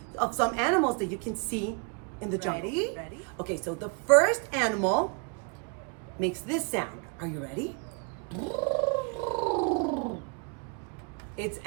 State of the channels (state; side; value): quieter; left; 35.3 dB